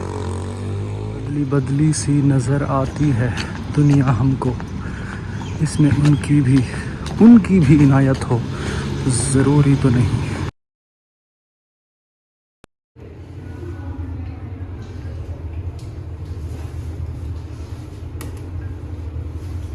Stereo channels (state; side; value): identical; both; correlation 1.00